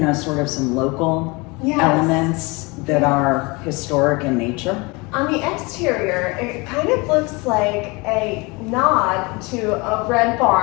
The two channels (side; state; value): right; quieter; 26.4 dB